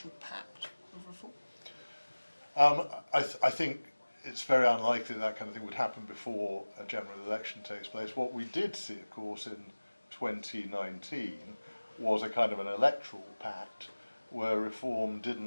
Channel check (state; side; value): inverted; both; correlation -1.00